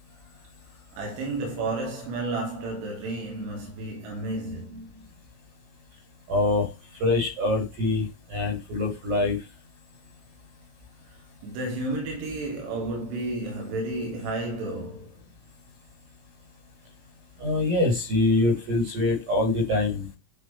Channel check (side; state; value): left; late; 17 ms